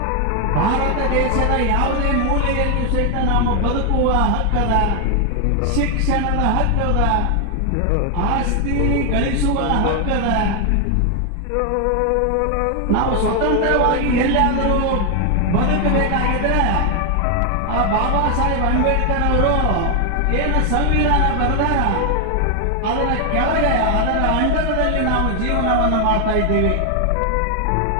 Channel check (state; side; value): different; both; correlation 0.01